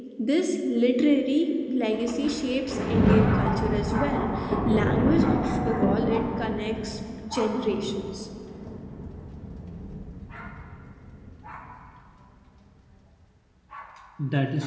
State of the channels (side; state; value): both; identical; correlation 1.00